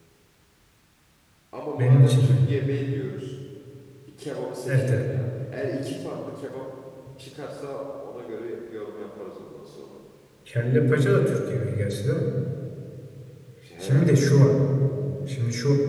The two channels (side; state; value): both; identical; correlation 1.00